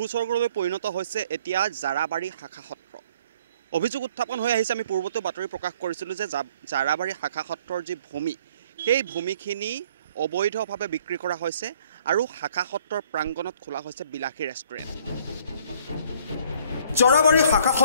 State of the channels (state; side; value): inverted; both; correlation -0.59